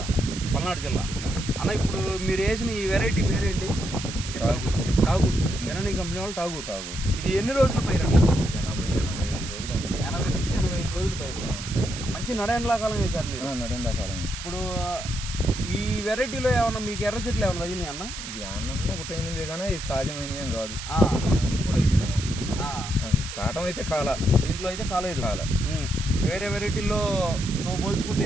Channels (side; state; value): right; noise; hiss, 9 dB below the sound